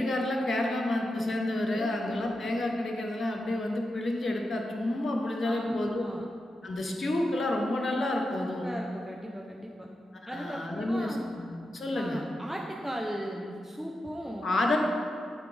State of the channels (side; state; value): both; normal; correlation 0.88